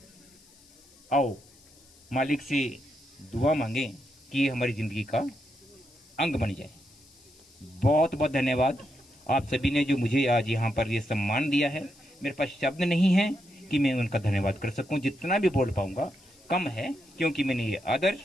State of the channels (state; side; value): noise; left; hiss, 27 dB below the sound